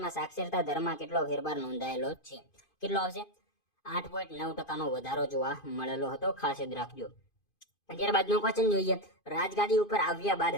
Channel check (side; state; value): right; late; 2.5 ms